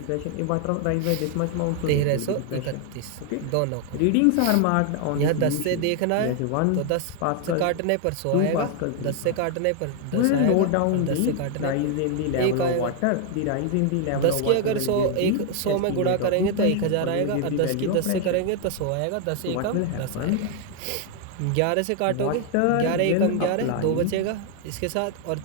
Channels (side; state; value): both; different; correlation 0.00